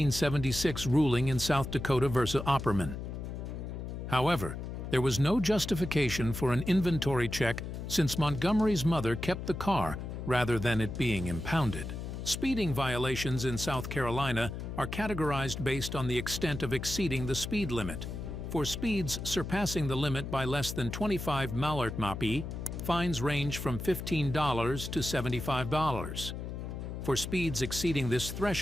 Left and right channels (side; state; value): left; noise; hum, 7 dB below the sound